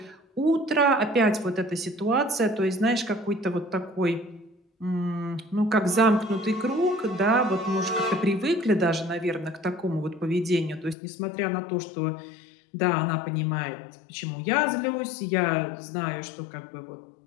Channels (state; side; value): drops out; right; at 11.0 s